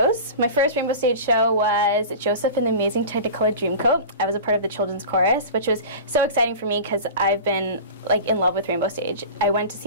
My first Rainbow Stage show was Joseph and the Amazing Technicolor Dreamcoat. I was a part of the children's chorus, which was so exciting for me because I've been like in love with Rainbow Stage. I went to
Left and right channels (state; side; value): inverted; both; correlation -0.34